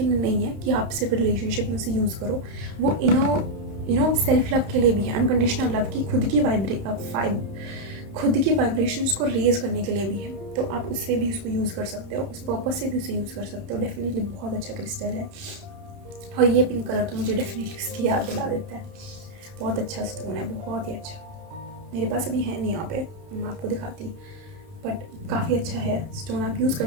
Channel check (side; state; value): left; late; 31 ms